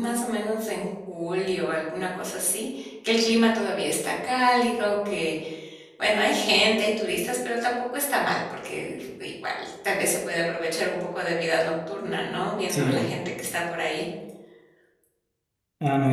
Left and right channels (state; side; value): identical; both; correlation 1.00